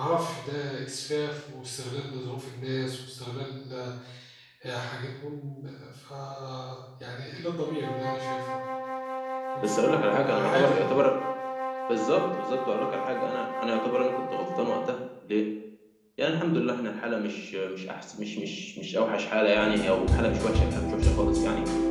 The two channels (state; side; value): identical; both; correlation 1.00